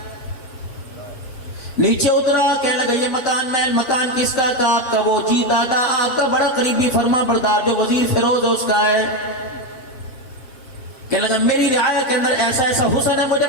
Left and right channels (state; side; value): late; right; 7.7 ms